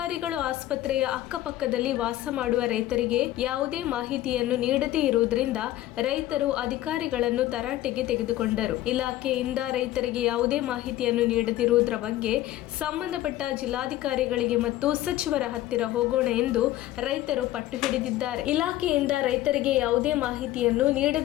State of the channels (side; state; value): right; quieter; 14.7 dB